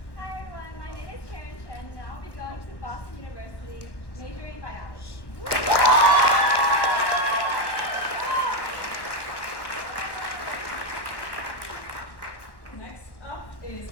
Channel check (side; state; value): right; late; 1.1 ms